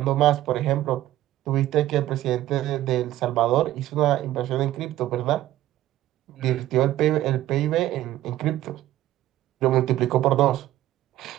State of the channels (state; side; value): quieter; left; 14.2 dB